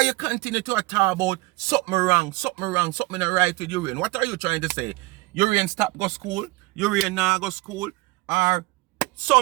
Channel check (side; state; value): left; quieter; 22.8 dB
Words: you continue to talk about something wrong, something not right with Urian? What are you trying to say? Urian stop go school, Urian now go school, or